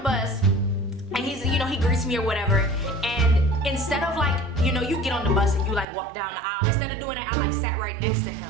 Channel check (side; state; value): left; drops out; at 5.9 s